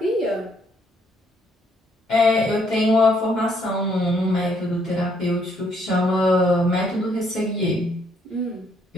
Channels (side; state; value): both; normal; correlation 0.69